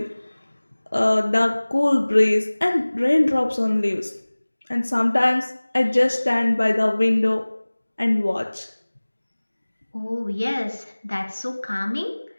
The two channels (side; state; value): both; inverted; correlation -1.00